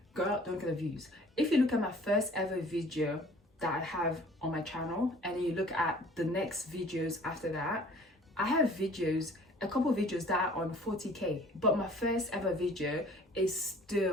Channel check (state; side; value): normal; both; correlation 0.51